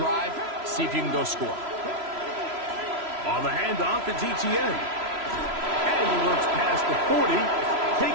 see if you can go score. On the handoff, it's ETN. And he works past the 40,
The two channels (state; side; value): late; left; 3.0 ms